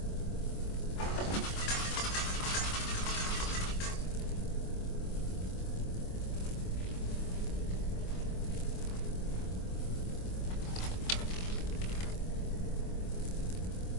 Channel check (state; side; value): late; right; 25 ms